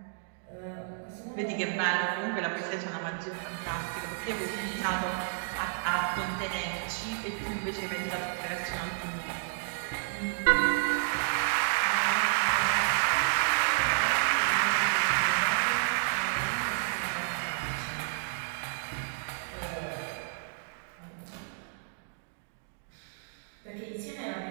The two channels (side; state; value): left; silent; digital silence